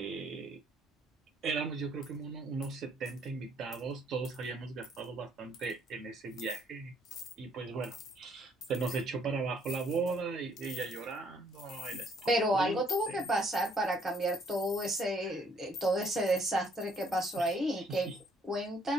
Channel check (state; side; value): normal; both; correlation 0.66